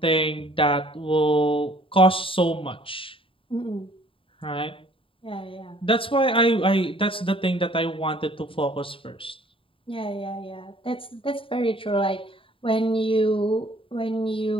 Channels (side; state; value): right; late; 0.26 ms